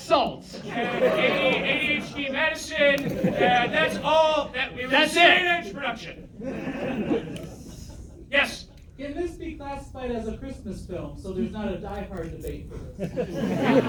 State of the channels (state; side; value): identical; both; correlation 1.00